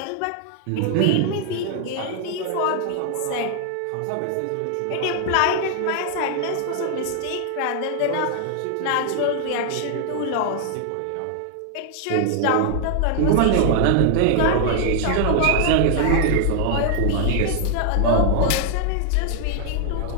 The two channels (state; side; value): different; both; correlation 0.00